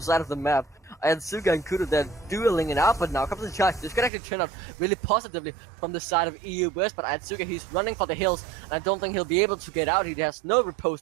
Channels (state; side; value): drops out; left; at 4.1 s